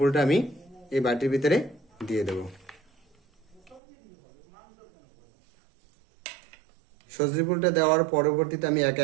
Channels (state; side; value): drops out; left; at 3.8 s